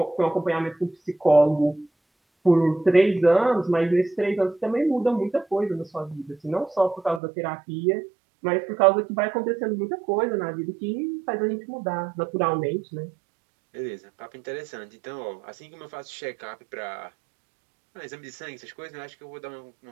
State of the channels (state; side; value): drops out; left; at 7.2 s